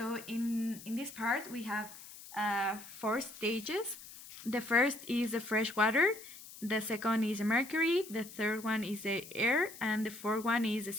in this part we have 4 stages. The first is the fresh water, the second is the mercury, the third one is the air, and the fourth one is the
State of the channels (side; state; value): left; noise; hiss, 16 dB below the sound